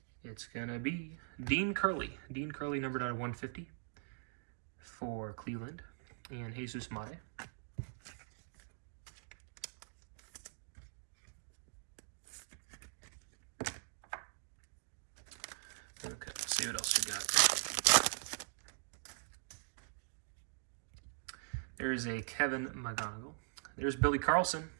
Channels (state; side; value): silent; left; digital silence